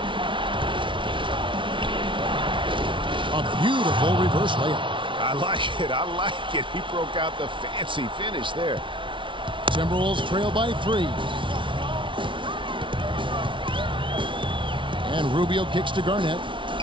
A beautiful reverse layup. I like it. I like it. He broke out the fancy finish there. Timberwolves trail by 3. And Rubio kicks to Garnett.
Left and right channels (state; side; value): late; left; 0.24 ms